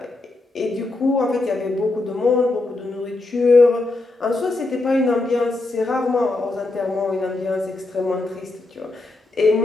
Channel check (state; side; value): quieter; right; 3.1 dB